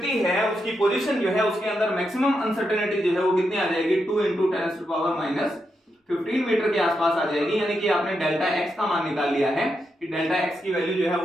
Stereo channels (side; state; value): both; normal; correlation 0.84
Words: है, उसकी पोजीशन जो है, उसके अंदर मैक्सिमम अनसर्टेनिटी जो है वो कितनी आ जाएगी, 2 × 10⁻⁻15 मीटर के आसपास आ जाएगी। यानी कि आपने डेल्टा एक्स का मान निकाल लिया है कि डेल्टा एक्स की वैल्यू जो है